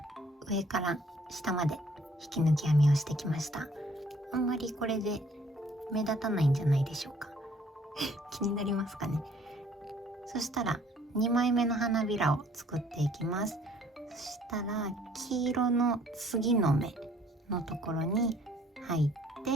上から下まで引き抜き編みをしてきました。あんまりこれで目立たないんじゃないでしょうか気になりますかね。そしたら2枚目の花びらを作っていきます。そしたら黄色の次の目のところに入っ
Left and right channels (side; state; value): both; normal; correlation 0.59